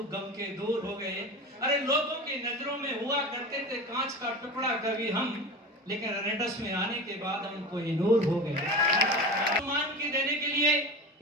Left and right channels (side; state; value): both; normal; correlation 0.29